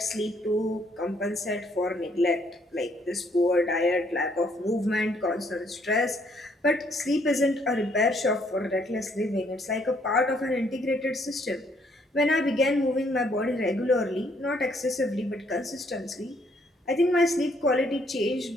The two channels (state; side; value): normal; both; correlation 0.68